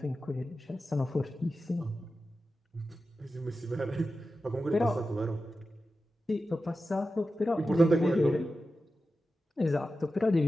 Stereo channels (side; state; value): both; normal; correlation 0.92